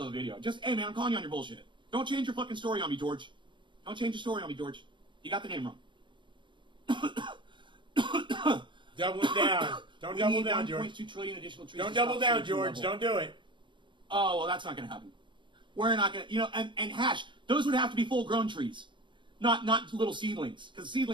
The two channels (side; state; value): left; late; 0.23 ms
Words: of the video. Just, hey man, I'm calling you on your bullshit. Don't change your fucking story on me, George. Don't change your story on me, George. You got the name wrong. Double down. Don't double down, George. 1.2 trillion additional trees. Don't double down, George. Don't do it. Oh, well, that's not going to happen. We're not going to, and hash, those would have to be full-grown trees, not little seedlings, because